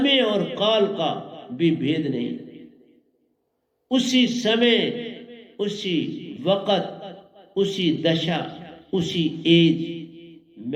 और काल का भी भेद नहीं। उसी समय, उसी वक्त, उसी दशा, उसी एज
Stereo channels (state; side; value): identical; both; correlation 1.00